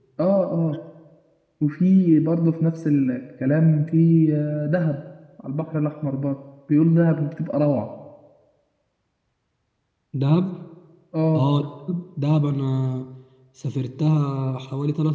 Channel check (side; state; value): both; identical; correlation 1.00